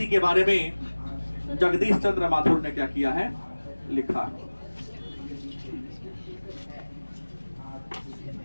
के बारे में जगदीश चंद्र माथुर ने क्या किया है? लिखा।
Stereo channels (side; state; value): both; inverted; correlation -1.00